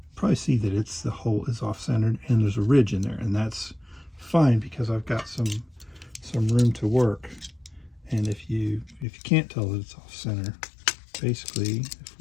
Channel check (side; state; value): right; drops out; at 9.1 s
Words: probably see that the hole is off-centered and there's a ridge in there, and that's fine because I've got some room to work. And if you can't tell that it's off-center, basically if